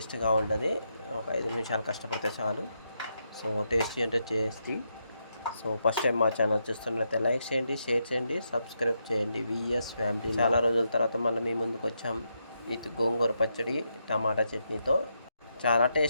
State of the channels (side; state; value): both; inverted; correlation -0.81